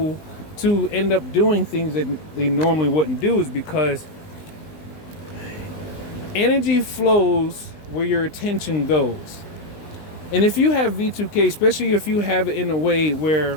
to end up doing things that they normally wouldn't do, is because energy flows where your attention goes. And if you have V2K, especially if you have it in a way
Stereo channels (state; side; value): late; right; 19 ms